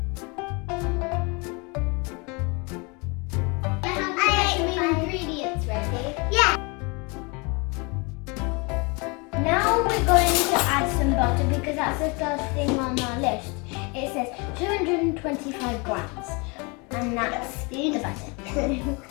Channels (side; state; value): right; quieter; 29.8 dB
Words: Ingredients ready? Yeah. Now we're going to add some butter because that's the first thing on our list. It says 225 grams, and that's the butter.